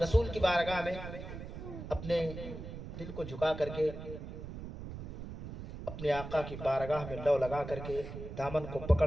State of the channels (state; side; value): noise; right; rumble, 9 dB below the sound